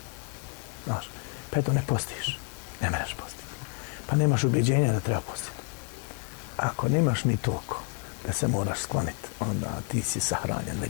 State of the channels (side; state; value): right; quieter; 39.3 dB